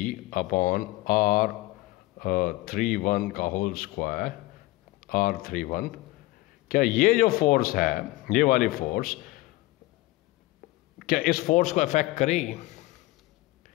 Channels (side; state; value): right; quieter; 19.5 dB